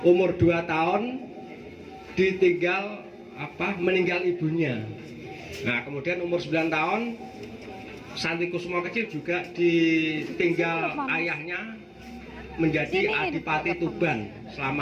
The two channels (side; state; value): both; identical; correlation 1.00